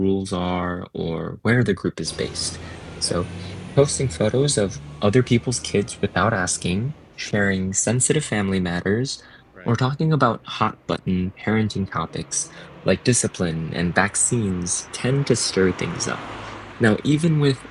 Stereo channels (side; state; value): both; identical; correlation 1.00